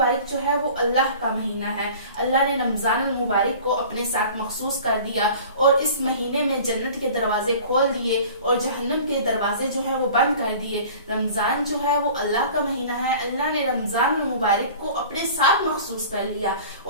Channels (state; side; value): inverted; both; correlation -0.44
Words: جو ہے وہ اللہ کا مہینہ ہے۔ اللہ نے رمضان المبارک کو اپنے ساتھ مخصوص کر دیا اور اس مہینے میں جنت کے دروازے کھول دیے اور جہنم کے دروازے جو ہے وہ بند کر دیے۔ رمضان جو ہے وہ اللہ کا مہینہ ہے، اللہ نے رمضان المبارک کو اپنے ساتھ مخصوص کر لیا،